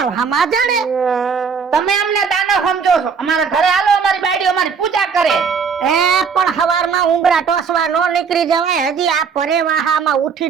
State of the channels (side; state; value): left; quieter; 6.0 dB